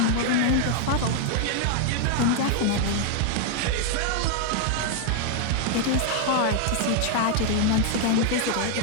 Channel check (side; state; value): both; different; correlation 0.00